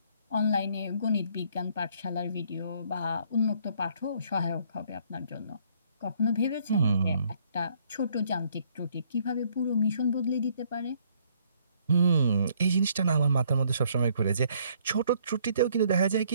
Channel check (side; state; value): both; inverted; correlation -0.65